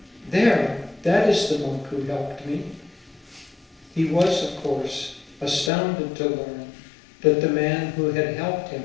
"There, that is the monk who helped me." He was, of course, astounded to learn that the man who had helped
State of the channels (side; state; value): right; drops out; at 5.7 s